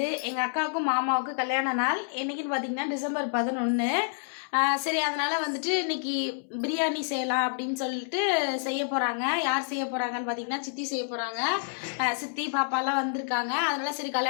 எங்கள் அக்காவுக்கும் மாமாவுக்கும் கல்யாண நாள். என்னைக்குன்னு பார்த்தீங்கன்னா டிசம்பர் 11. சரி, அதனால வந்துட்டு இன்னைக்கு பிரியாணி செய்யலாம் அப்படின்னு சொல்லிட்டு செய்ய போகிறாங்க. யார் செய்ய போகிறாங்கன்னு பார்த்தீங்கன்னா சித்தி செய்ய போகிறாங்க. சித்தி பாப்பாலாம் வந்திருக்காங்க. அதனால சரி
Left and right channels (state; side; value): silent; right; 59 dB below the other